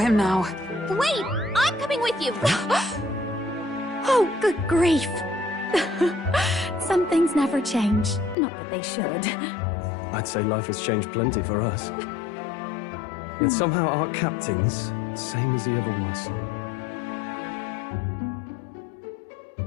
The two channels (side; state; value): right; drops out; at 8.3 s